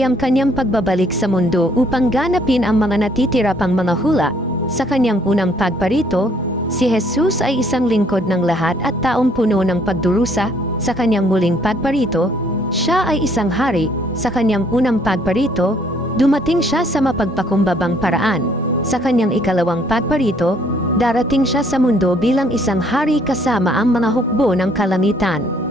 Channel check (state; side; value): normal; both; correlation 0.63